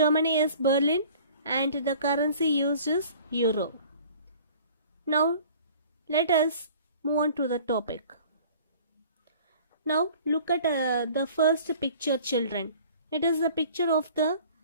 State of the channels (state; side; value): inverted; both; correlation -0.48